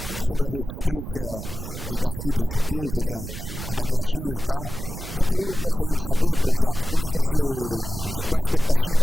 e das lutas do povo na América Latina e tal. Então eu gostaria de saber, Pronzatto, qual é a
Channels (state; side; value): noise; right; rumble, 9 dB below the sound